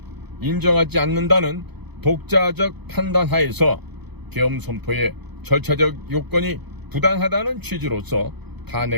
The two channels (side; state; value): left; late; 0.99 ms